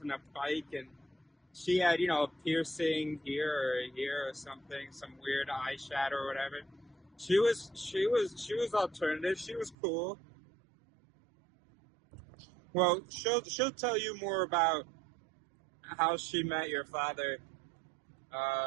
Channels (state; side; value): drops out; left; at 9.8 s